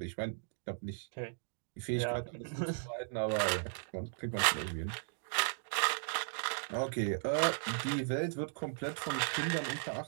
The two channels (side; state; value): left; silent; digital silence